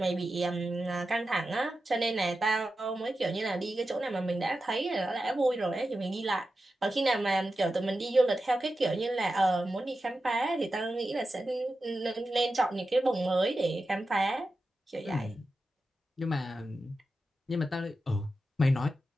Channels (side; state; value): both; normal; correlation 0.91